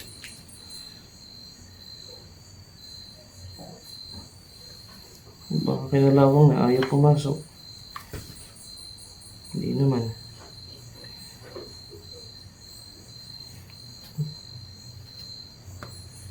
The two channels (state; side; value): identical; both; correlation 1.00